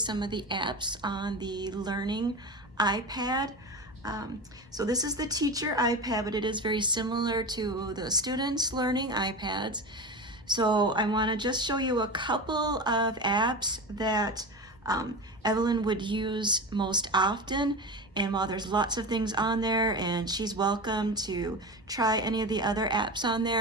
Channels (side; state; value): both; normal; correlation 0.26